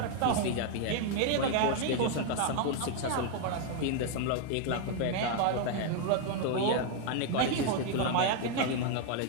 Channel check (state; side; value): different; both; correlation 0.00